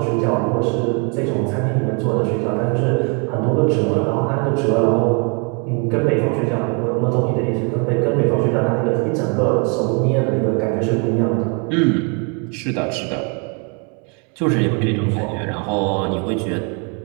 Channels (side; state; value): left; quieter; 35.7 dB